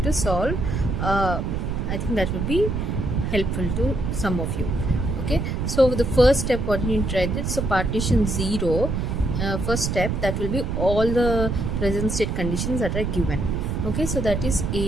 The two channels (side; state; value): right; noise; rumble, 1 dB below the sound